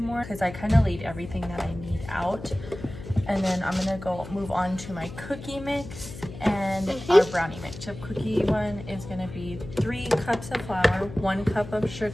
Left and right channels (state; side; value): noise; left; hum, 13 dB below the sound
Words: because I kind of laid everything that I need out. And then I'm gonna go move on to my cookie mix and our brownie mix. Chip cookie one is gonna be 3 cups of flour, 1 cup of